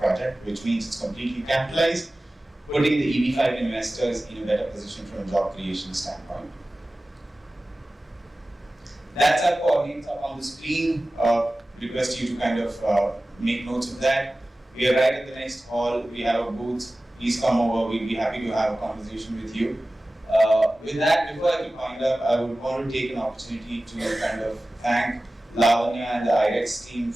which means it's completely capitalized, putting the EB-5 investors in a better position from a job creation standpoint. That's our coordinates up on the screen. Request you to kind of make notes of that. We are right at the next hall. We have a booth. Please come over. We'll be happy to have a conversation with you. With that, before I wind up, I would want to take an opportunity to kind of thank Lavanya and the IREX team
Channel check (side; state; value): both; normal; correlation 0.96